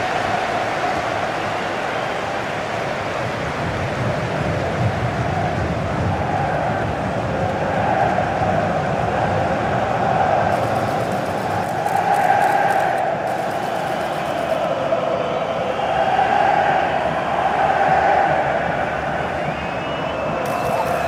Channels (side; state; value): both; identical; correlation 1.00